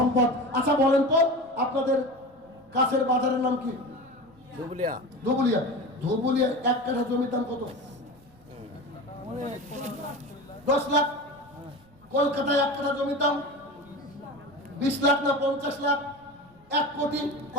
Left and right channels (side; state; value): right; noise; rumble, 30 dB below the sound